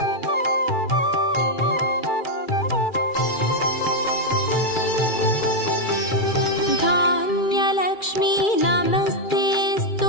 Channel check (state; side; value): late; right; 2.3 ms